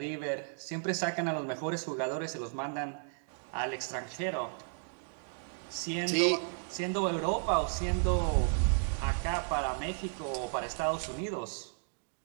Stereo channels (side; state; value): left; silent; digital silence